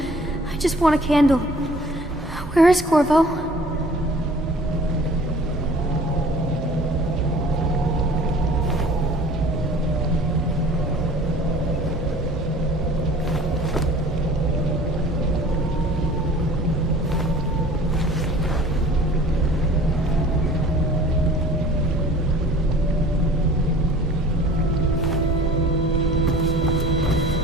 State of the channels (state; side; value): normal; both; correlation 0.47